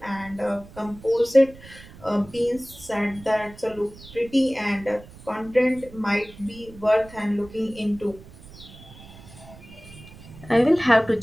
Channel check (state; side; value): noise; right; rumble, 19 dB below the sound